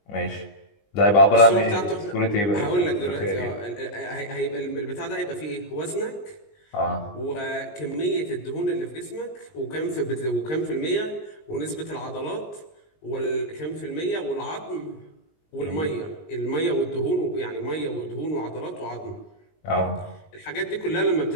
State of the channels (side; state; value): right; late; 19 ms